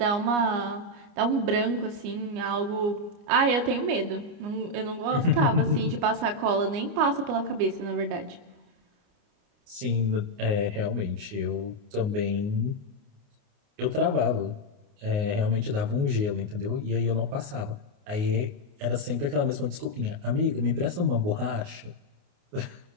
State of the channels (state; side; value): late; left; 29 ms